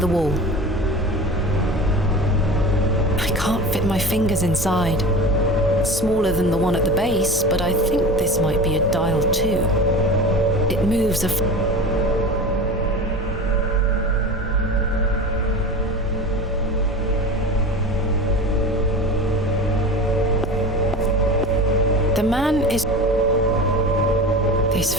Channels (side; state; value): both; normal; correlation 0.32